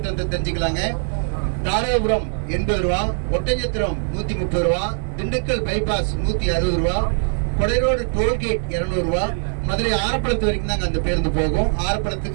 தெரிஞ்சுக்கலாங்க. தாராபுரம் 80 ரூபா, ஒட்டஞ்சத்திரம் 130 ரூபா, திண்டுக்கல் பைபாஸ் 160 ரூபா, கொடைரோடு டோல்கேட் 200 ரூபா, மதுரை ஆரப்பளத்து வரைக்கும் தாங்க அந்த பேருந்து போகும்.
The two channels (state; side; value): silent; left; 58 dB below the other